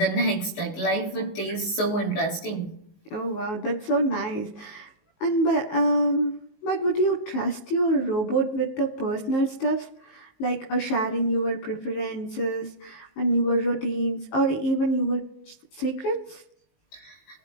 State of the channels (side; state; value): right; late; 19 ms